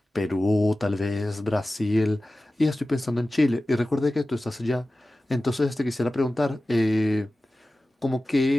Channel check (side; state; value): both; normal; correlation 0.95